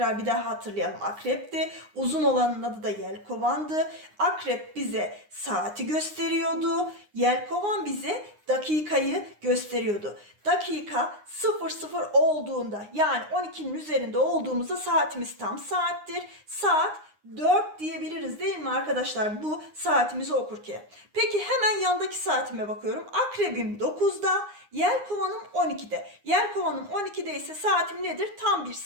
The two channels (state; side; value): late; left; 9.7 ms